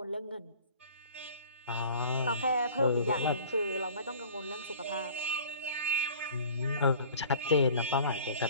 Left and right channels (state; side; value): inverted; both; correlation -0.46